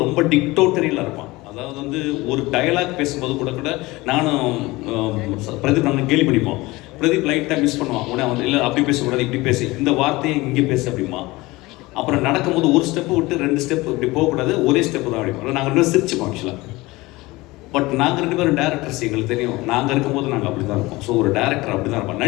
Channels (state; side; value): quieter; right; 21.0 dB